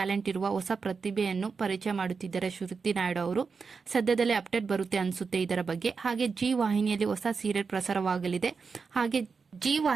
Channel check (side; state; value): left; quieter; 5.1 dB